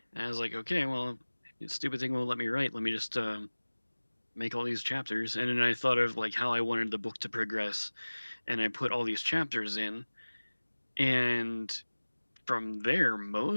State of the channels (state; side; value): inverted; both; correlation -1.00